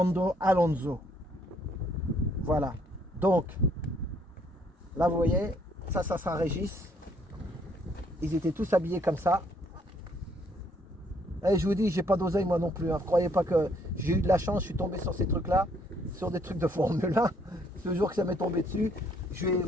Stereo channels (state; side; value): normal; both; correlation 0.67